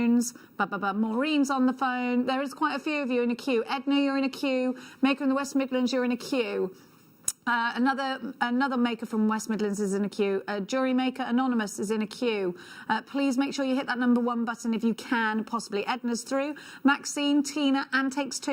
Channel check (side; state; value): both; identical; correlation 1.00